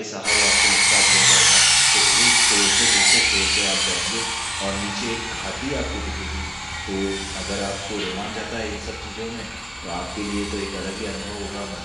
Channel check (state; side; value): identical; both; correlation 1.00